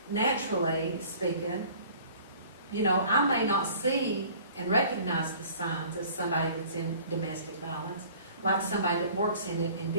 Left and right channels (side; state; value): both; inverted; correlation -0.50